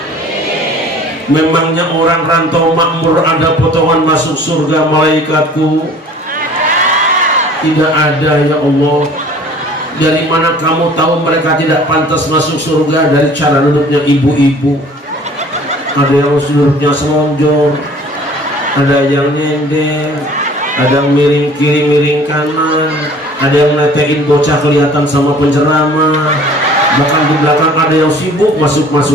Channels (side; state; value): both; normal; correlation 0.50